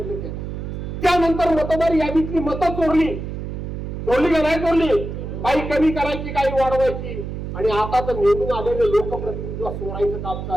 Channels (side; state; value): right; noise; hum, 6 dB below the sound